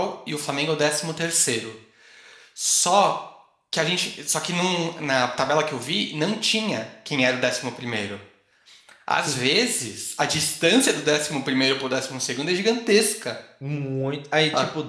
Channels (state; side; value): identical; both; correlation 1.00